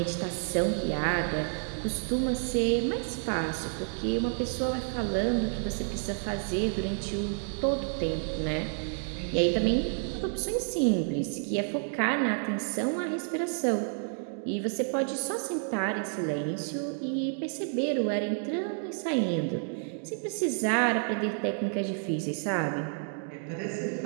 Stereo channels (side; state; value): left; silent; 58 dB below the other